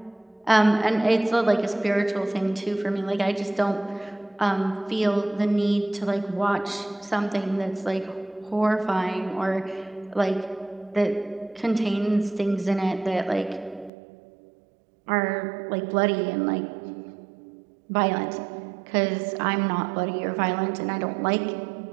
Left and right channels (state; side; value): drops out; left; at 13.9 s